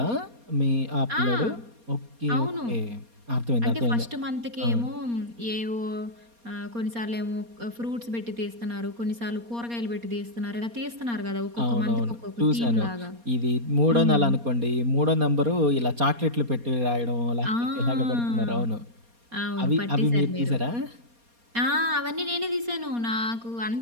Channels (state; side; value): late; left; 4.2 ms